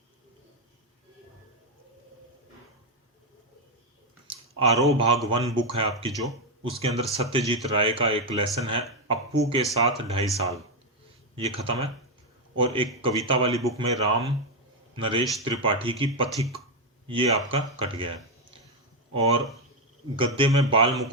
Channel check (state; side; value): normal; both; correlation 0.05